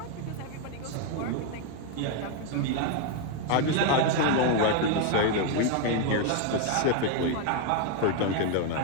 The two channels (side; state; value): both; different; correlation 0.01